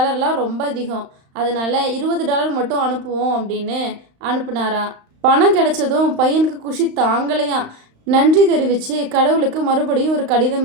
ரொம்ப அதிகம். அதனால $20 மட்டும் அனுப்புவோம் அப்படின்னு அனுப்புனாராம். பணம் கிடைச்சதும் பையனுக்கு குஷி தாங்கலையாம். நன்றி தெரிவித்து கடவுளுக்கு மறுபடியும் ஒரு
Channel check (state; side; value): late; left; 35 ms